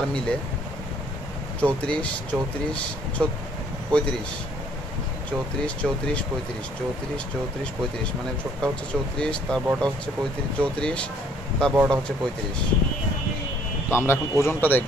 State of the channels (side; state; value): both; normal; correlation 0.62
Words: মিলে 34 34 35, 34 34 35, 34 34 35, মানে ছোটটা হচ্ছে 34, তার বড়টা হচ্ছে 35, 34 তার বড়টা হচ্ছে 35। তো আমরা এখন ওজনটা